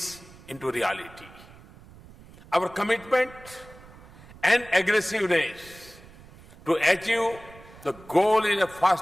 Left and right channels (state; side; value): noise; right; rumble, 21 dB below the sound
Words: into reality. Our commitment and aggressiveness to achieve the goal in a